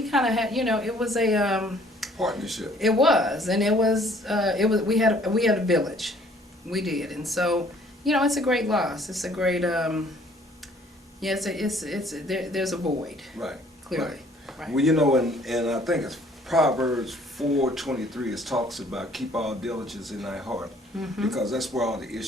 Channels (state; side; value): normal; both; correlation 0.59